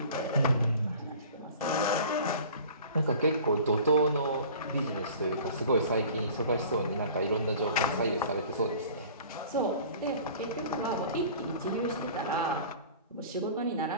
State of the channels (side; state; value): both; inverted; correlation -0.44